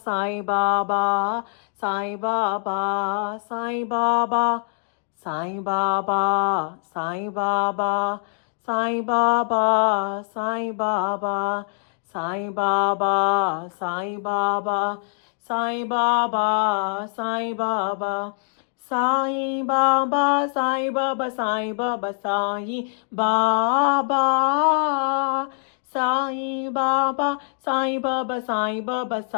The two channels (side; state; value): right; silent; digital silence